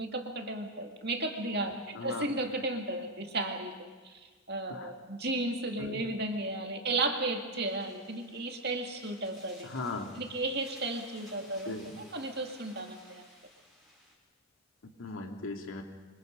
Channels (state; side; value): normal; both; correlation 0.02